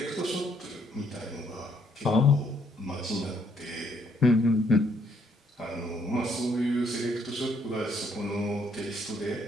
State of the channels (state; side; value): normal; both; correlation 0.69